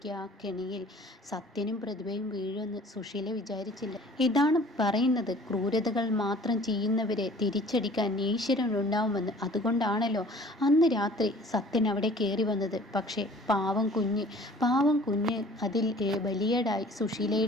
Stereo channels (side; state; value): both; normal; correlation 0.50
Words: ആ കെണിയിൽ സത്യനും പ്രതിഭയും വീഴുമെന്ന് സുശീല വിചാരിച്ചില്ല. ഇതാണ് പറയുന്നത്, ക്രൂരതകൾ മാത്രം ചെയ്യുന്നവരെ തിരിച്ചടിക്കാൻ ഈശ്വരൻ ഉണ്ടാവുമെന്ന്. അതുകൊണ്ടാണല്ലോ അന്ന് രാത്രി സത്യൻ അവിടെ കയറി വന്നത്. പക്ഷേ പാവം കുഞ്ഞ് അതിൽ ബലിയേടായി